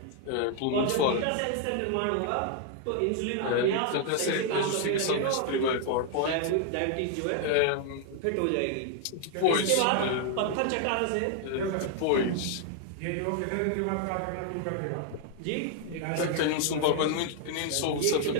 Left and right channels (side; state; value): both; different; correlation 0.00